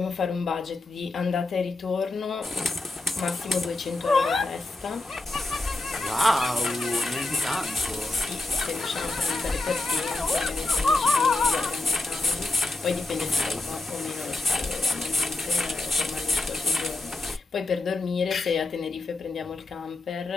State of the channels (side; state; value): right; quieter; 3.1 dB